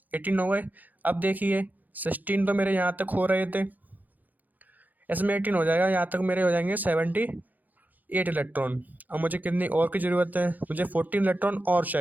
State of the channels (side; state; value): left; late; 0.085 ms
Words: 18 हो गए। अब देखिए, 16 तो मेरे यहाँ तक हो रहे थे, इसमें 18 हो जाएगा, यहाँ तक मेरे हो जाएंगे 78 इलेक्ट्रॉन। अब मुझे कितनी और की ज़रूरत है, मुझे 14 इलेक्ट्रॉन और